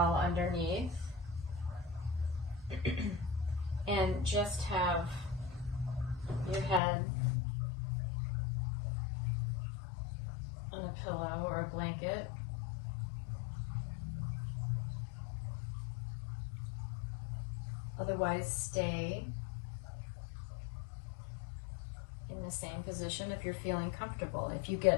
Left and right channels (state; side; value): drops out; right; at 6.8 s